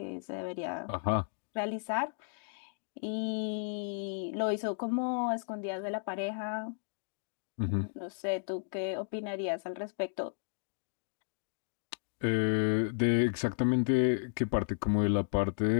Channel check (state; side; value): silent; right; digital silence